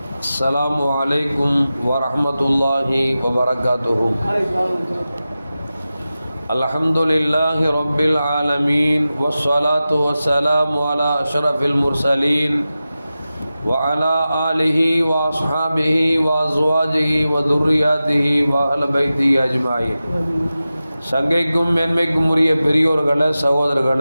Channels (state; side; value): inverted; both; correlation -0.94